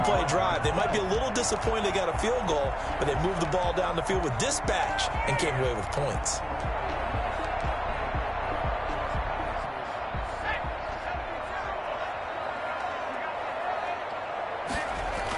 drive. They might be a little disappointed they got a field goal, but they moved the ball down the field with dispatch and came away with points.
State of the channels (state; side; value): identical; both; correlation 1.00